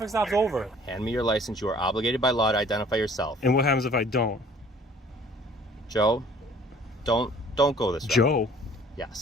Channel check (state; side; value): normal; both; correlation 0.54